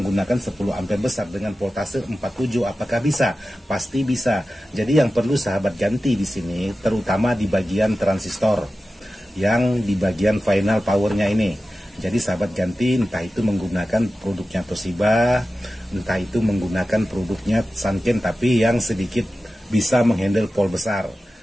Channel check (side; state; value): both; normal; correlation 0.94